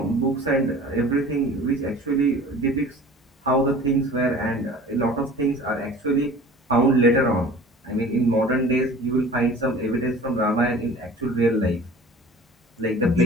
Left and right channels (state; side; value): normal; both; correlation 0.44